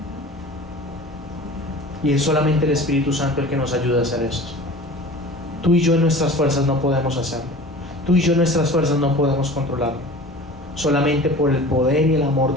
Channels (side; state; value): both; normal; correlation 0.40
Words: Y es solamente el Espíritu Santo el que nos ayuda a hacer esto. Tú y yo en nuestras fuerzas no podemos hacerlo. Tú y yo en nuestras fuerzas no podemos controlarlo. Solamente por el poder y el amor